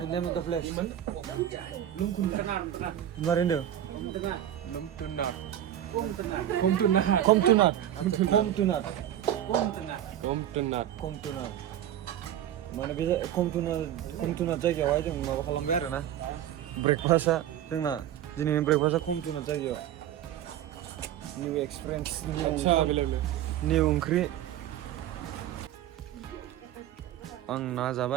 name of the place Lumtunat. माने बे कमटुनाट जायगायावहाय जों माबा खालामबाय आरोना ब्रेकफास्टआ जोंना दिनैनि ब्रेकफास्टआ कमटुनाट जायगायाव निउ एक्सपिरियेन्स निउ ओंख्रि आं ना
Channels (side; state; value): left; quieter; 11.4 dB